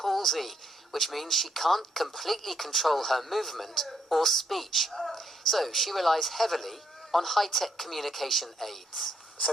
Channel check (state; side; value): normal; both; correlation 0.74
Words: which means she can't completely control her movement or speech. So she relies heavily on high-tech communication aids.